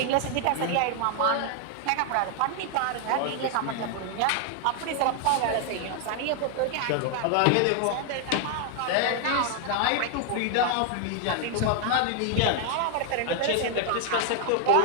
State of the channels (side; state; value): both; different; correlation 0.00